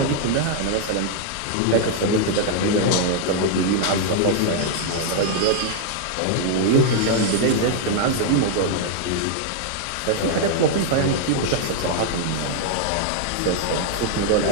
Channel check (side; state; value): both; different; correlation 0.00